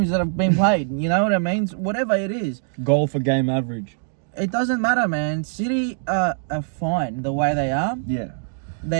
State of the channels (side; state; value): left; silent; digital silence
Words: that have been played. You know what I mean? So whatever it is. Goal for game average. It doesn't matter, man. City are fine the way they are. Yeah.